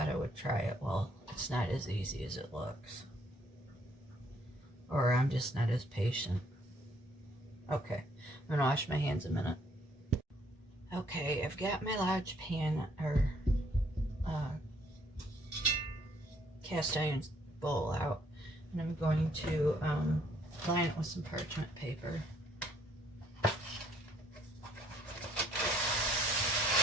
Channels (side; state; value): both; normal; correlation 0.66